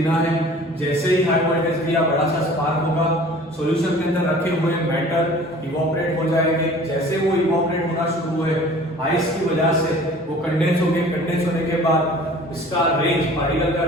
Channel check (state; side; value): normal; both; correlation 0.47